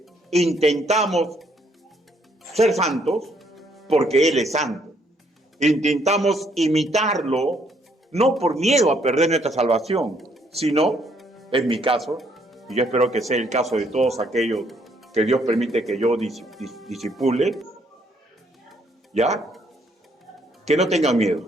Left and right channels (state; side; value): normal; both; correlation 0.69